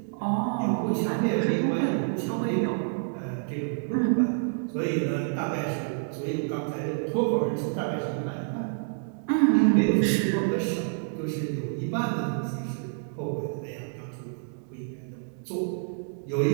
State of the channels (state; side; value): silent; left; digital silence